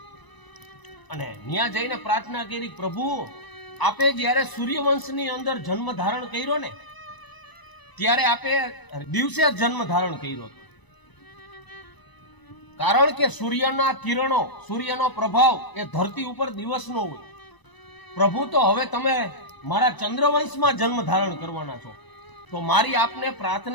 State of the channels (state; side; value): late; right; 1.0 ms